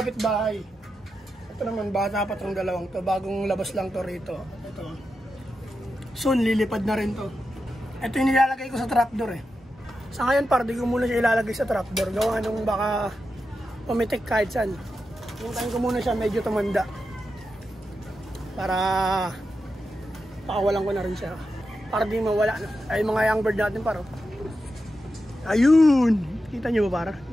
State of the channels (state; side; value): normal; both; correlation 0.89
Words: Ito naman, bata pa itong dalawang to. Bagong labas lang to rito. Ito. Soon, lilipad na rin to. Ito yung nilalagay ko sa trapdoor eh. Sa ngayon par, di ko muna siya ilalagay sa trapdoor. Gawa nung baka pumitik kahit saan. Puntahin ko muna siya, medyo tumanda. Para pakawalan ko na rin siya. Para di mawala. Ay mga young bird natin par. Ayun! Kita nyo ba par?